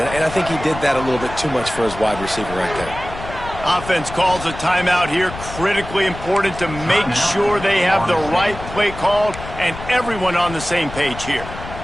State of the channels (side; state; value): left; noise; rumble, 12 dB below the sound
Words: I think he did that a little bit too much for his wide receiver right there. Offense calls a timeout here. Critically important to make sure they have the right play called and everyone on the same page here.